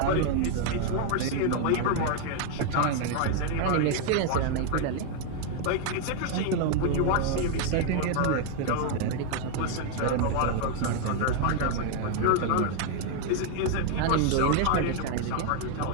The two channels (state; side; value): different; both; correlation 0.00